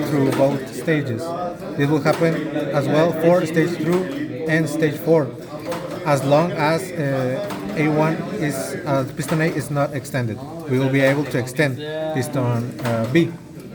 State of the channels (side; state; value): both; identical; correlation 1.00